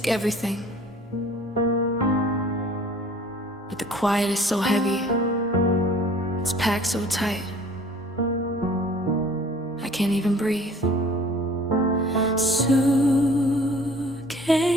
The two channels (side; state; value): both; normal; correlation 0.50